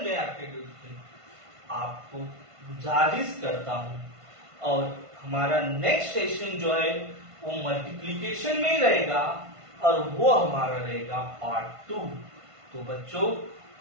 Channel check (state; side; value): late; left; 1.5 ms